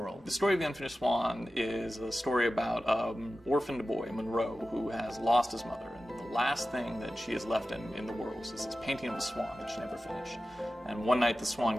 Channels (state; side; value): normal; both; correlation 0.94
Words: The story of the Unfinished Swan is a story about an orphaned boy, Monroe, who has lost his mother. And the last thing that she has left in the world is this painting of a swan that she never finished. And one night the